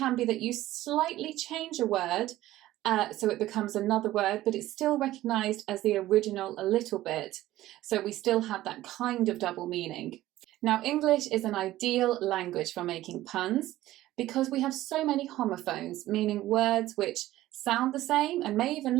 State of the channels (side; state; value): left; quieter; 15.3 dB